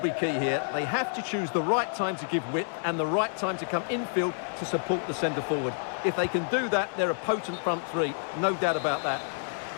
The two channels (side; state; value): right; silent; digital silence